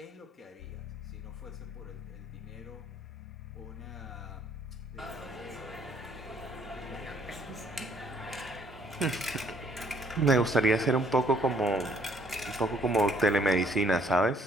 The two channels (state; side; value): normal; both; correlation 0.64